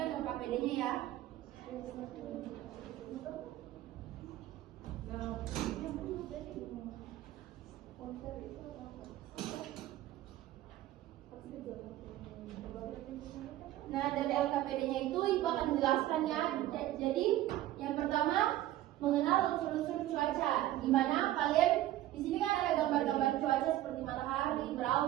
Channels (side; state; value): left; quieter; 14.4 dB